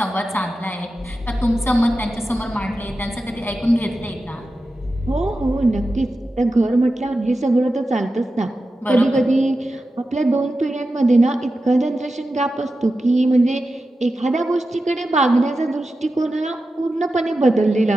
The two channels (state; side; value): normal; both; correlation 0.92